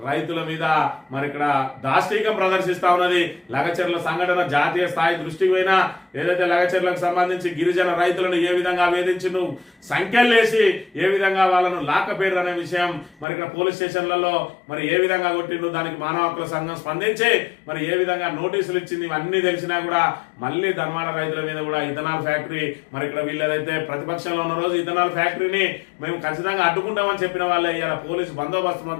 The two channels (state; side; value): drops out; right; at 13.2 s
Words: రైతుల మీద మరి ఇక్కడ దాష్టీకం ప్రదర్శిస్తా ఉన్నది. లగచెర్ల సంఘటన జాతీయ స్థాయి దృష్టికి పోయినా ఏదైతే లగచెర్లకు సంబంధించి గిరిజన రైతులను ఏ విధంగా వేధించిండు, సంఖ్యలేసి ఏ విధంగా వాళ్ళను లాక్కపోయారు అనే విషయం మరి ఇక్కడ పోలీస్ స్టేషన్లలో మరి ఏ విధంగా కొట్టిండు, దానికి మానవ హక్కుల సంఘం స్పందించి మరి ఏ విధంగా నోటీసులు ఇచ్చింది, ఇవన్నీ తెలిసినా కూడా మళ్ళీ ధన్వాడ రైతుల మీద కూడా ఇథనాల్ ఫ్యాక్టరీ మరి ఇక్కడ వీళ్ళదైతే ప్రతిపక్షంలో ఉన్న రోజు ఇథనాల్ ఫ్యాక్టరీని మేము ఖచ్చితంగా అడ్డుకుంటామని చెప్పిన వాళ్ళే ఇలా పోలీసు బందోబస్తు